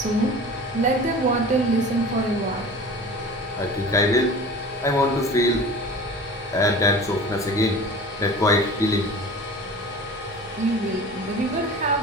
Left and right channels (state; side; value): normal; both; correlation 0.38